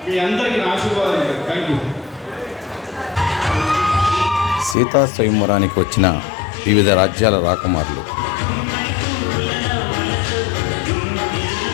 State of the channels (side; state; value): right; drops out; at 4.8 s